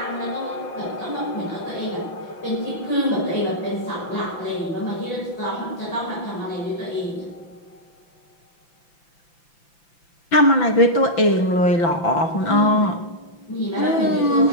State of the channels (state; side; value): late; right; 5.9 ms